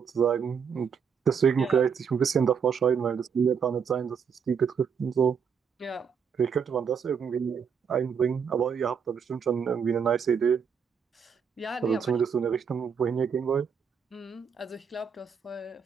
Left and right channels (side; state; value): left; quieter; 6.7 dB